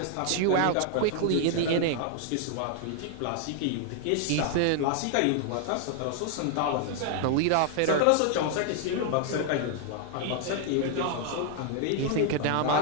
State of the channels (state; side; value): different; both; correlation 0.00